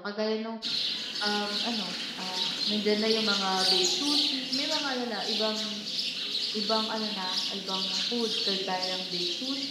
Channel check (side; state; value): both; identical; correlation 1.00